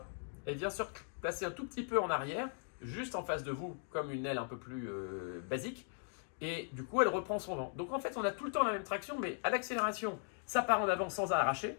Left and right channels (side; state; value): right; silent; 52 dB below the other